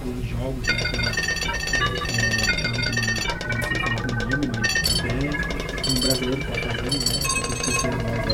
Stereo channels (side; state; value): both; identical; correlation 1.00